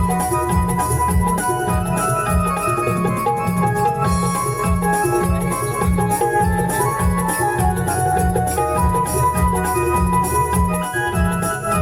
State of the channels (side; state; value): both; identical; correlation 1.00